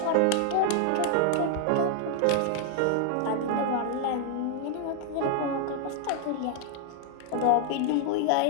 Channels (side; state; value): both; different; correlation 0.00